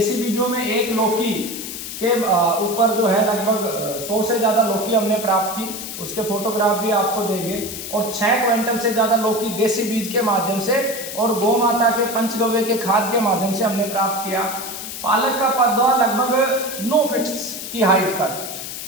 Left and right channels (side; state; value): left; noise; hiss, 8 dB below the sound